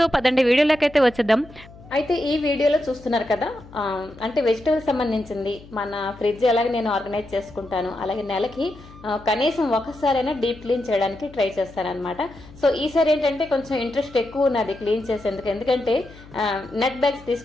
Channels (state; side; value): noise; left; hum, 20 dB below the sound